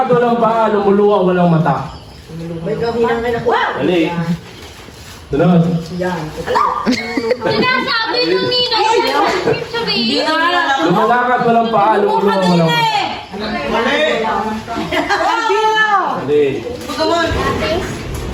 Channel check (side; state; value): both; identical; correlation 1.00